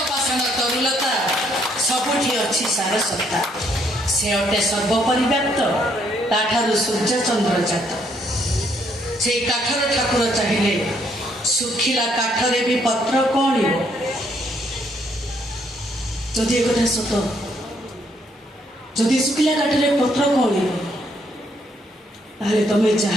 तरुलता सबुठी अच्छी सारसत्ता से अटे सर्वपरिव्याप्त ताठारु सूर्य चंद्र जात से काठर ठाकुर चाहिए सुखिला काठरे भी पत्र कौन जदि एक सत जदि सुखिला काठरे पत्र कौन ताले तमे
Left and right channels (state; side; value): normal; both; correlation 0.71